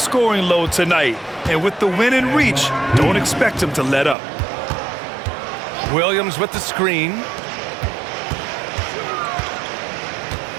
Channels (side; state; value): left; drops out; at 4.2 s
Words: load tonight. And with the win in reach, don't expect him to let up. Williams with the screen.